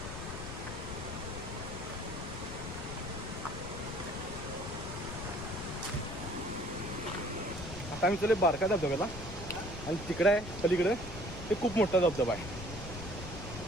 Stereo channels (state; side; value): noise; left; rumble, 9 dB below the sound